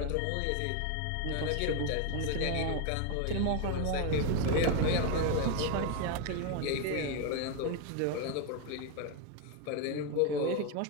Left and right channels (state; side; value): different; both; correlation 0.02